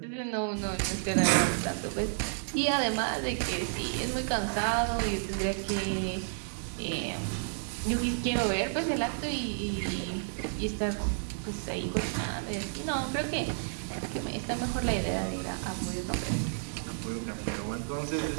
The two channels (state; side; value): silent; left; digital silence